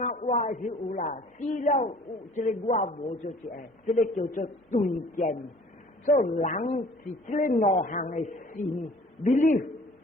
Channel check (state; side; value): normal; both; correlation 0.52